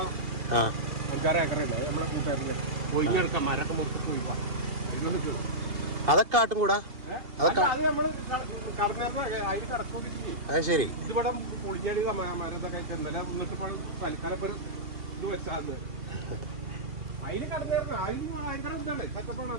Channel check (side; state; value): left; late; 2.8 ms